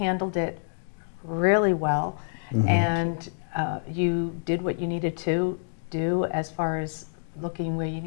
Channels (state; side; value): silent; right; digital silence